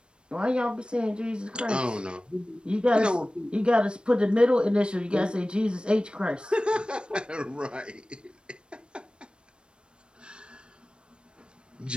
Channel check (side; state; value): left; late; 0.055 ms